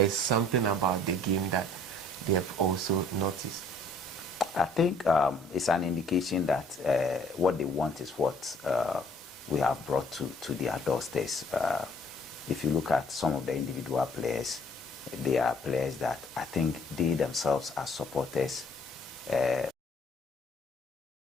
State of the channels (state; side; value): normal; both; correlation 0.58